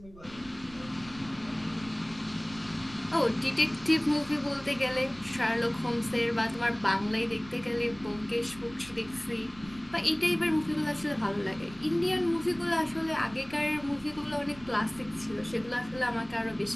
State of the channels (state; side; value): noise; right; rumble, 20 dB below the sound